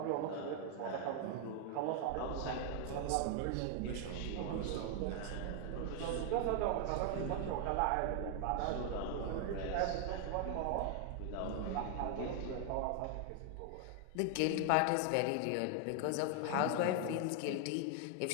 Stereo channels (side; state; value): both; different; correlation 0.00